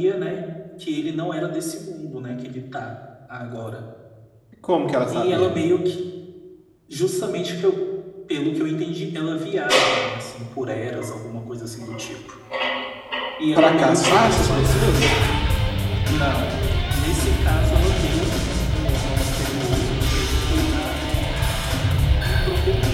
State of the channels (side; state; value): both; identical; correlation 1.00